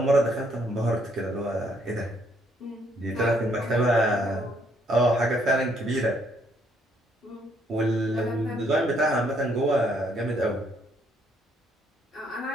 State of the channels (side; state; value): both; normal; correlation 0.69